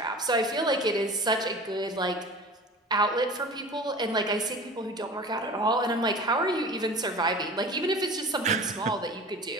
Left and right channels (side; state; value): both; normal; correlation 0.38